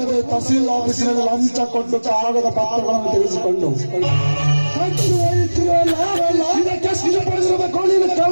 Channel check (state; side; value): inverted; both; correlation -1.00